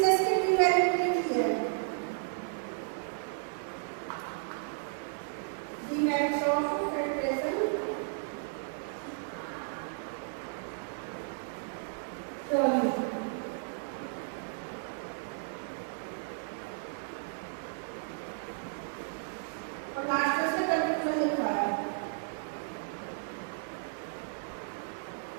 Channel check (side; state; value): left; silent; digital silence